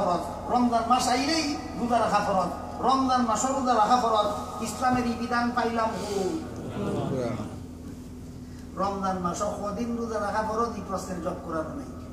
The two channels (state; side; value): identical; both; correlation 1.00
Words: রমজান মাস আইলেই রোজা রাখা ফরজ, রমজান মাস রোজা রাখা ফরজ। ইসলামের এই বিধান পাইলাম রমজান মাস কদিন রোজা রাখা ফরজ, এই প্রশ্নের জবাব কোরআন নেই।